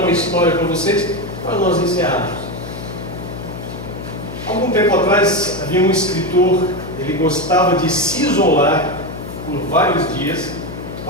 história para vocês, para nós encerrarmos. Algum tempo atrás havia um escritor, ele gostava de se isolar por vários dias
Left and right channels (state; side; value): noise; left; hum, 11 dB below the sound